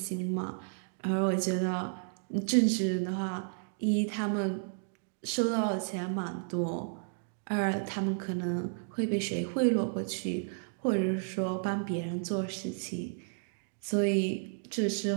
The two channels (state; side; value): silent; left; digital silence